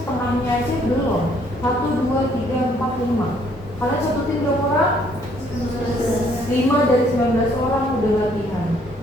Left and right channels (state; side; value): normal; both; correlation 0.65